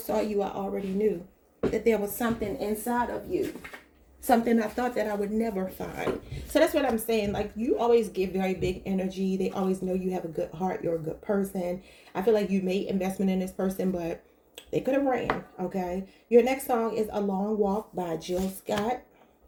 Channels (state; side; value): identical; both; correlation 1.00